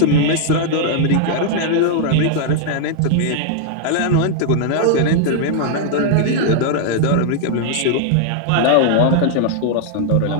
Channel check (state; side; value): different; both; correlation -0.01